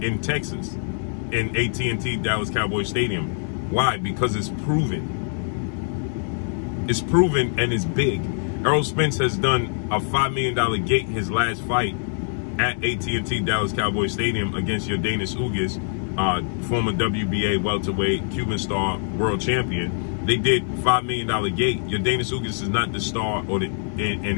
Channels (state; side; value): silent; right; 63 dB below the other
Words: Texas, in AT&T Dallas Cowboys Stadium. Why? Because it's proven. It's proven and it's big. Errol Spence has done a $5 million gate his last fight at AT&T Dallas Cowboys Stadium against Yordenis Ugas, former WBA welterweight Cuban star world champion. they did $5 million gate. Your Dana Sugas is not the star, or and